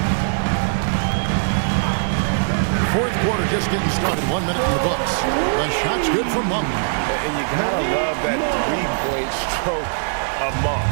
Fourth quarter just getting started. 1 minute in the books. The shot's good from Monk. And you gotta love that three-point stroke of Monk.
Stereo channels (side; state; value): left; silent; digital silence